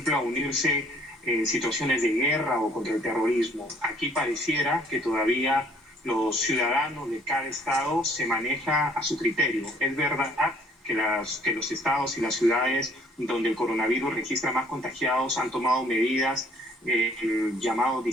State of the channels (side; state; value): both; normal; correlation 0.59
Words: a unirse en situaciones de guerra o contra el terrorismo. Aquí pareciera que todavía los ciudadanos de cada estado se maneja a su criterio. Es verdad que los estados y las ciudades donde el coronavirus registra más contagiados han tomado medidas, el llamado